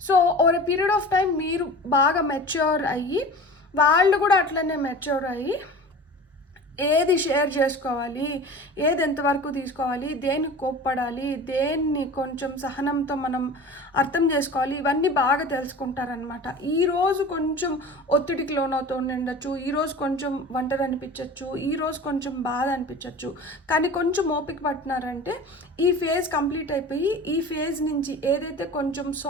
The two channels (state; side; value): normal; both; correlation 0.37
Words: So over a period of time మీరు బాగా మెచ్యూర్ అయ్యి వాళ్ళు కూడా అట్లనే మెచ్యూర్ అయ్యి ఏది షేర్ చేసుకోవాలి, ఏది ఎంతవరకు తీసుకోవాలి, దేనికి కోప్పడాలి, దేన్ని కొంచెం సహనంతో మనం అర్థం చేసుకోవాలి, ఇవన్నీ బాగా తెలుసుకుంటారనమాట. ఈరోజు కొంచెం ఒత్తిడికి లోనవుతూ ఉండొచ్చు, ఈరోజు కొంచెం ఒంటరి అనిపించవచ్చు, ఈరోజు కొంచెం బాధ అనిపించవచ్చు. కానీ కొంచెం ఓపిక పట్టినారంటే ఈ ఫేజ్ కంప్లీట్ అయిపోయి ఈ ఫేజ్ నుంచి ఏదైతే కొంచెం